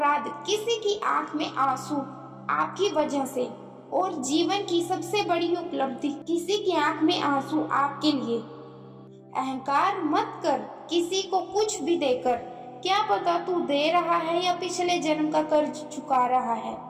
किसी की आंख में आंसू आपकी वजह से, और जीवन की सबसे बड़ी उपलब्धि किसी की आंख में आंसू आपके लिए। अहंकार मत कर किसी को कुछ भी देकर, क्या पता तू दे रहा है या पिछले जन्म का कर्ज चुका रहा है।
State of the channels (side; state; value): both; identical; correlation 1.00